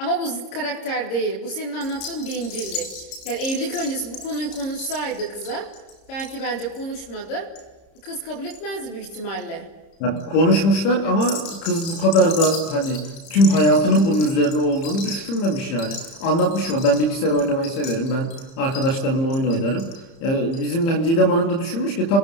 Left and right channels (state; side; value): late; right; 30 ms